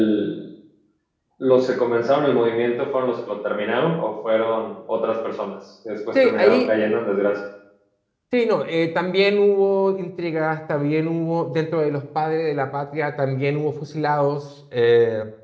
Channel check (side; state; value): both; identical; correlation 1.00